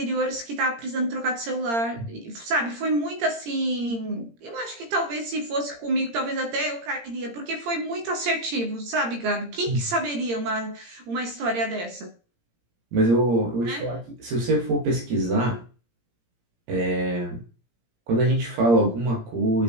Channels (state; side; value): late; left; 17 ms